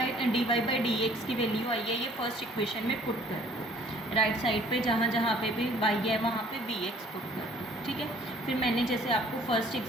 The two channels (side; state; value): both; normal; correlation 0.56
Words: डी एक्स की वैल्यू आई है ये फर्स्ट इक्वेशन में पुट कर दो। राइट साइड पे जहाँ जहाँ पे भी y है वहाँ पे vx पुट कर दो। ठीक है, फिर मैंने जैसे आपको फर्स्ट